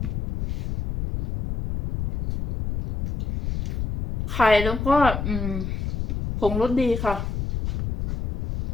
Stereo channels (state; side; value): noise; left; rumble, 4 dB below the sound